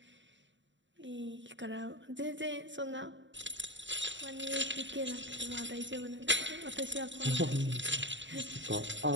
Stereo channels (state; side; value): late; left; 0.54 ms